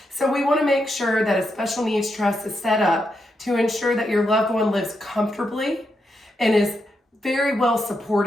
So we want to make sure that a special needs trust is set up to ensure that your loved one lives comfortably and is very well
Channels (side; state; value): both; normal; correlation 0.83